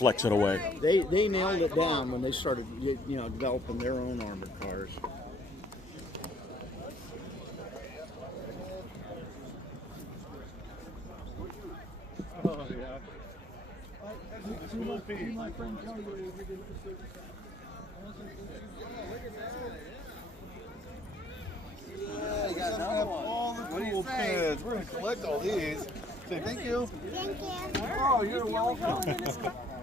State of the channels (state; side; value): normal; both; correlation 0.61